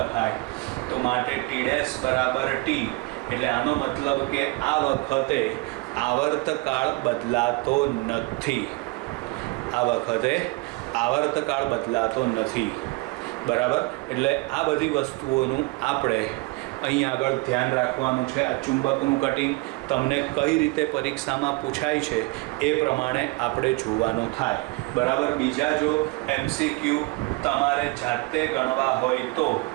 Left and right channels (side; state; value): left; quieter; 24.6 dB